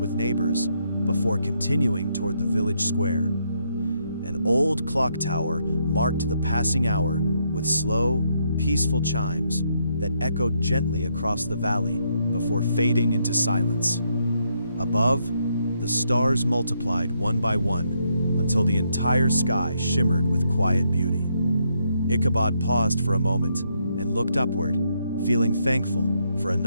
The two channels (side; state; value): both; inverted; correlation -0.76